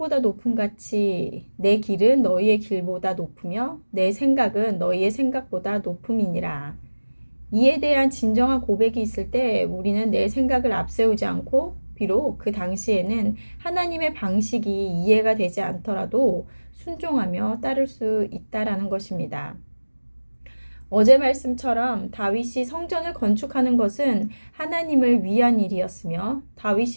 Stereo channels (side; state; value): both; inverted; correlation -1.00